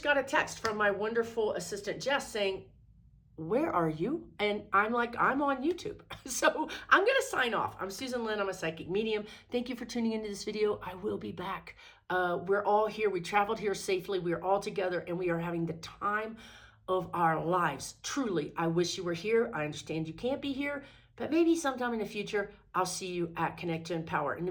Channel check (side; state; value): both; identical; correlation 1.00